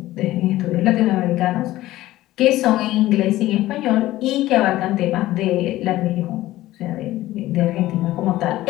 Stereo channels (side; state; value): right; quieter; 16.0 dB